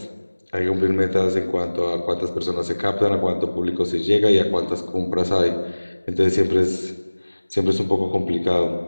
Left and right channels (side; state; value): both; inverted; correlation -1.00